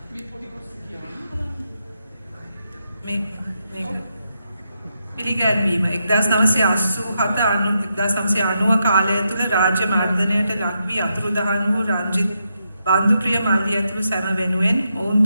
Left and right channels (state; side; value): inverted; both; correlation -0.83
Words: පිළිගැන්වීම 1990 කාලය තුළ රාජ්‍ය මර්ධනයට ලක් වී අතුරුදහන් වූ රංජිත් බන්දුප්‍රිය මල්ලි ඇතුළු සැම වෙනුවෙන් ඔවුන්